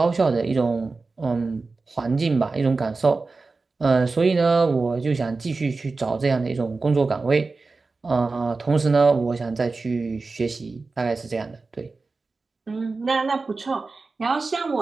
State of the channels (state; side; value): quieter; left; 3.9 dB